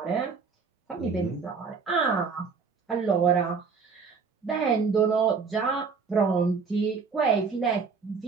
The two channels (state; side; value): quieter; left; 5.3 dB